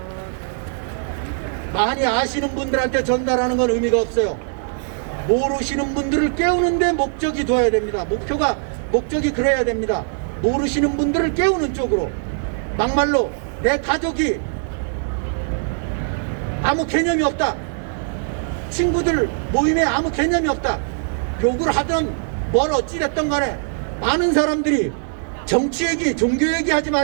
많이 아시는 분들한테 전달하는 건 의미가 없어요. 모르시는 분들을 깨우는 데 목적이 둬야 됩니다. 목적이 그래야 됩니다. 모르시는 분들을 깨우는 쪽으로. 막말로 내 가족이 아무 개념이 없다, 친구들 모임에 아무 개념이 없다, 욕을 하든 뭘 어찌됐든 간에 많은 사람들이 정치 얘기, 종교 얘기 하지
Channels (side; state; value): left; silent; 65 dB below the other